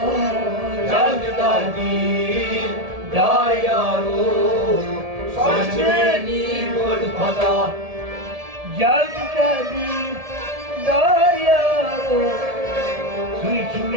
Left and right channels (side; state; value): left; late; 1.7 ms